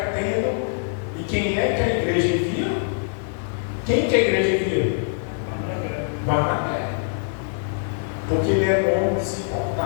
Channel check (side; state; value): right; silent; 57 dB below the other